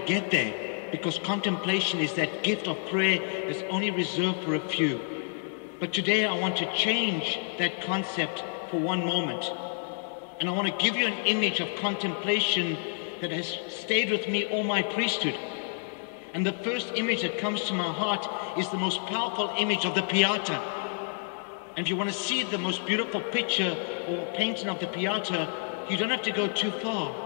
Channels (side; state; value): right; silent; 59 dB below the other